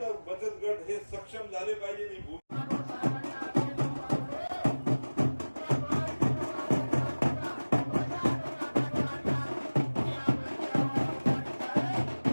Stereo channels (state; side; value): inverted; both; correlation -1.00